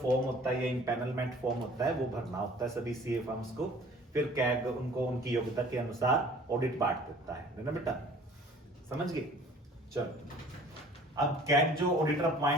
होता है, ये इम्पैनलमेंट फॉर्म होता है, वो भरना होता है सभी सीए फर्म्स को, फिर कैग उनको उनकी योग्यता के अनुसार ऑडिट बांट देता है ना बेटा, समझ गए। चलो अब कैग जो ऑडिटर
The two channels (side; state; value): both; normal; correlation 0.50